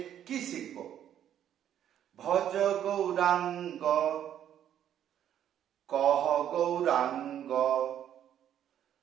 কি শিখব? ভজ গৌরাঙ্গ কহ গৌরাঙ্গ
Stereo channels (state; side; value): quieter; left; 10.3 dB